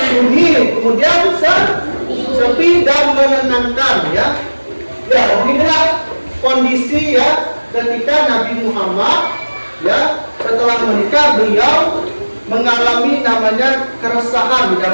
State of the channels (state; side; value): inverted; both; correlation -1.00